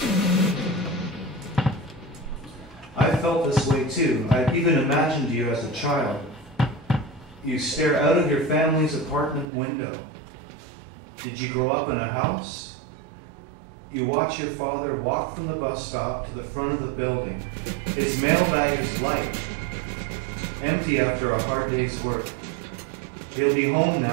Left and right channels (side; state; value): left; drops out; at 9.5 s